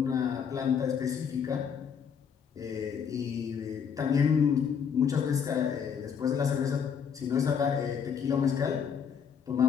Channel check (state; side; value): quieter; right; 7.1 dB